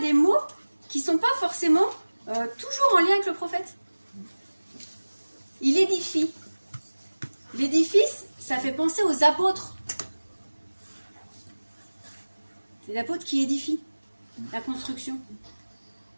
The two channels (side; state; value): both; inverted; correlation -1.00